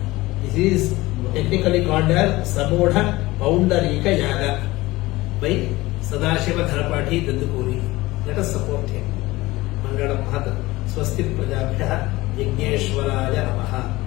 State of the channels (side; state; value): right; quieter; 19.5 dB